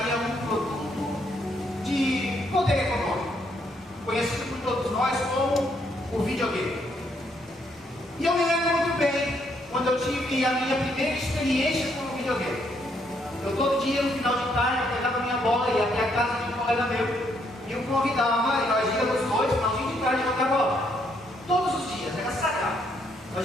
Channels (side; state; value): both; normal; correlation 0.72